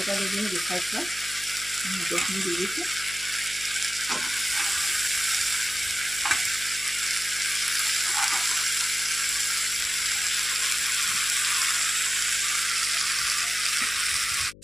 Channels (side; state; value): left; noise; hum, 21 dB below the sound